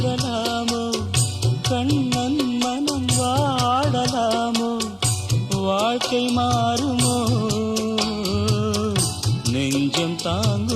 கண்ணன் மனம் வாடலாமோ? வாழ்க்கை மாறுமோ? நெஞ்சம்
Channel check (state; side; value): identical; both; correlation 1.00